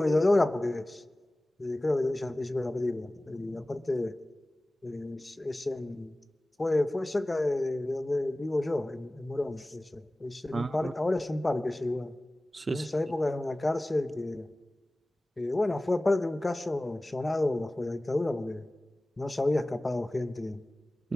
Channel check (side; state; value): both; normal; correlation 0.98